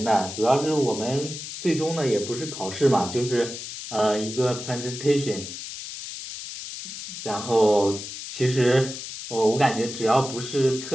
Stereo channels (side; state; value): left; noise; hiss, 9 dB below the sound